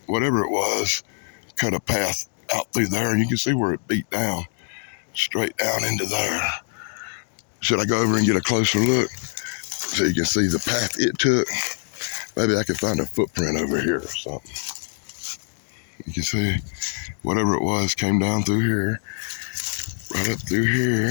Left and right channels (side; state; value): right; silent; digital silence